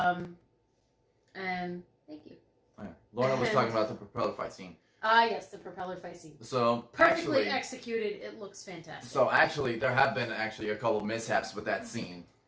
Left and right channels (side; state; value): both; identical; correlation 1.00